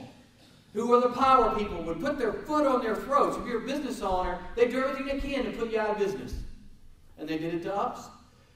who were the power people, would put their foot on their throats. If you're a business owner, they do everything they can to put you out of business. And they did it to us.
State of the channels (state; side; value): identical; both; correlation 1.00